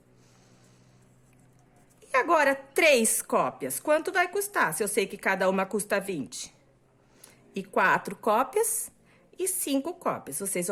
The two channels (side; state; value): both; identical; correlation 1.00